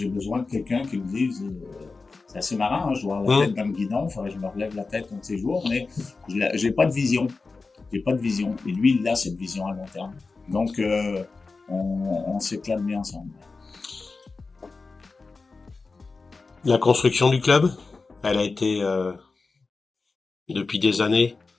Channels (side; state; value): right; quieter; 4.0 dB